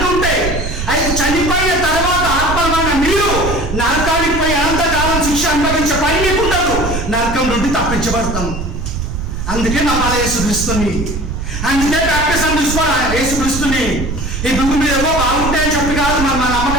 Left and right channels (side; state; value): right; noise; rumble, 5 dB below the sound